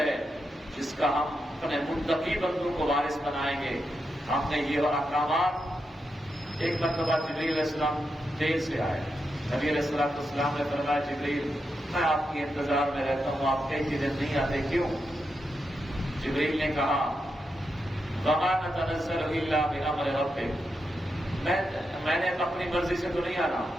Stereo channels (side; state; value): both; normal; correlation 0.86